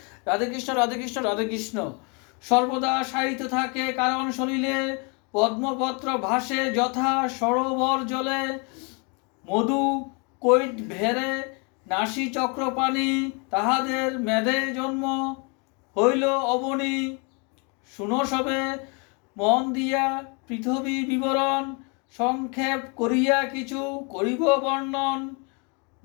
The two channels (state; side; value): quieter; right; 33.4 dB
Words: রাধেকৃষ্ণ রাধেকৃষ্ণ রাধেকৃষ্ণ। সর্বদা সাহিত্য থাকে কারণ শরীরে পদ্মপত্র ভাসে যথা সরোবর জলে, মধু কৈট ভেরে নাসি চক্রপাণি, তাহাদের মেধে জন্ম হইল অবনী। শুনো সবে মন দিয়া পৃথিবী বিবরণ, সংক্ষেপ করিয়া কিছু করিব বর্ণন।